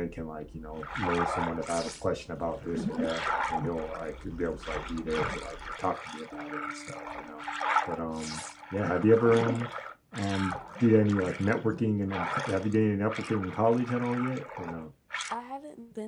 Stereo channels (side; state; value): both; identical; correlation 1.00